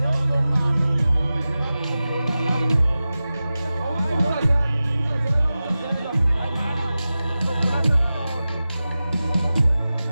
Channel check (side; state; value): both; inverted; correlation -0.95